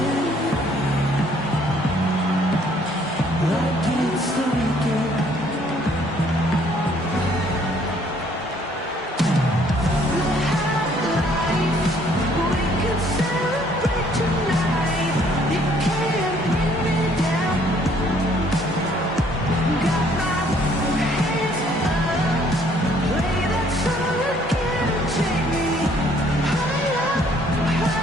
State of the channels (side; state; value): both; normal; correlation 0.62